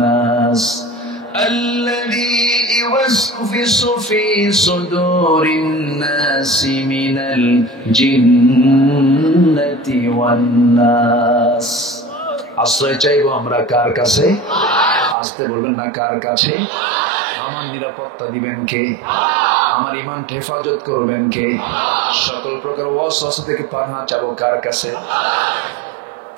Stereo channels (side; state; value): left; drops out; at 15.2 s